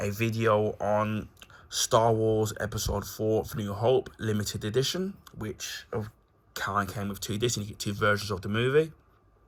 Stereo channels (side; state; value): both; identical; correlation 1.00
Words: a video on Star Wars Episode 4 for New Hope limited edition, which kind of came with two discs, and you get two versions of the movie.